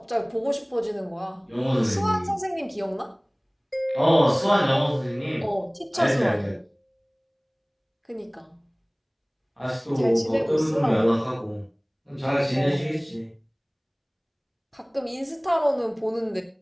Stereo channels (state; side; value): identical; both; correlation 1.00